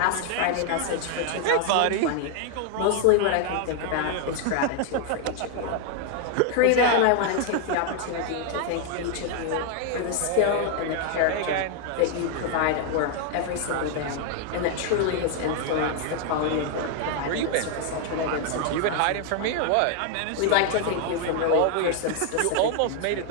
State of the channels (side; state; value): both; different; correlation 0.00